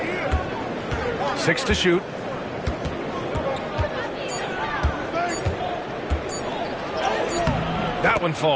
Six to shoot. That one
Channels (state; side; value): identical; both; correlation 1.00